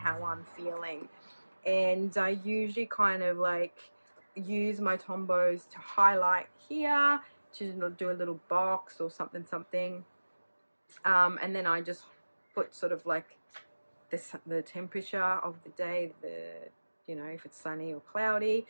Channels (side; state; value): both; inverted; correlation -1.00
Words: I'm feeling. And I usually kind of like use my Tombows to highlight here, to do a little box or something. And then I just put sort of like the temperature of the day, you know, if it's sunny or cloudy.